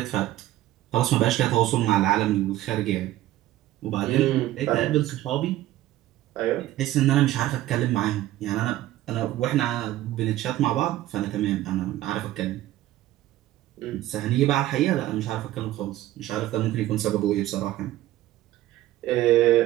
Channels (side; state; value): left; quieter; 14.8 dB